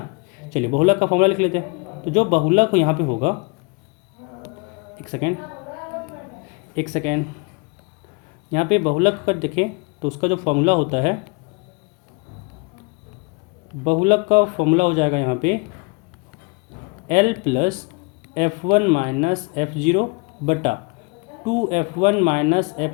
चलिए बहुलक का फॉर्मूला लिख लेते हैं। तो जो बहुलक यहाँ पे होगा, एक सेकेंड, यहाँ पे बहुलक का देखें तो उसका जो फॉर्मूला होता है, बहुलक का फॉर्मूला हो जाएगा यहाँ पे L plus F1 minus F0 बटा 2F1 minus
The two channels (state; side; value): quieter; right; 30.6 dB